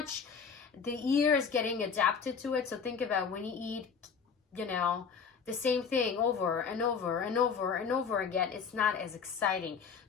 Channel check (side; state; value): right; quieter; 6.1 dB